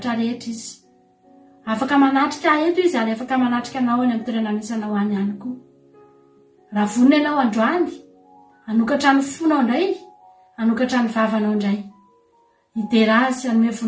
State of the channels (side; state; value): both; identical; correlation 1.00